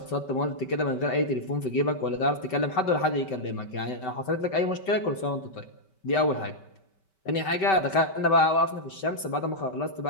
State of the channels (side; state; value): right; late; 5.2 ms